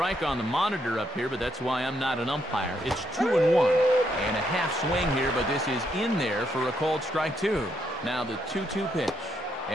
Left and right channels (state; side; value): normal; both; correlation 0.76